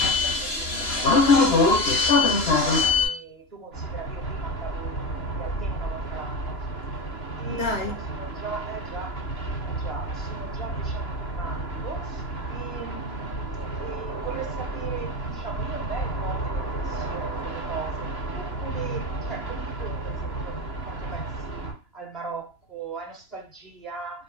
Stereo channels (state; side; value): late; right; 2.9 ms